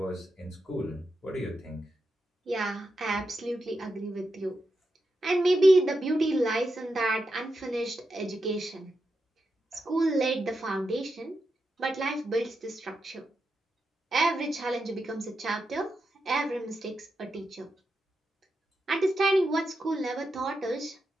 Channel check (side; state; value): both; normal; correlation 0.87